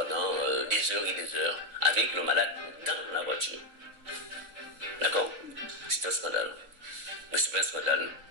des heures et des heures avec le malade dans la voiture. D'accord? C'est un scandale. Mais c'est pas un scandale.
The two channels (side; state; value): left; late; 3.6 ms